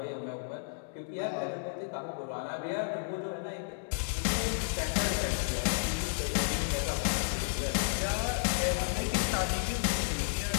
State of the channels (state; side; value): silent; right; digital silence